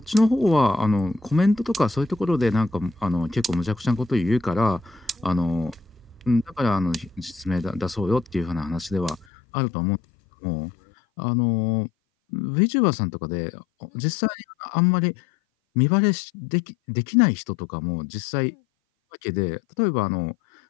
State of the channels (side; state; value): right; drops out; at 9.2 s